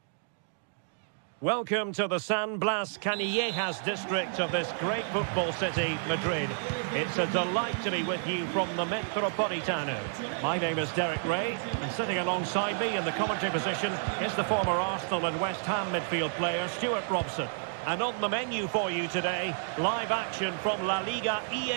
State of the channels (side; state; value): left; silent; digital silence